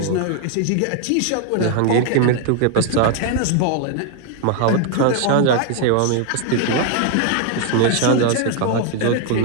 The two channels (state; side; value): different; both; correlation 0.00